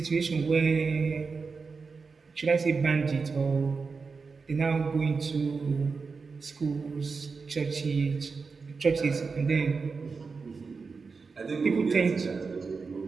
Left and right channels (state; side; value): quieter; left; 4.7 dB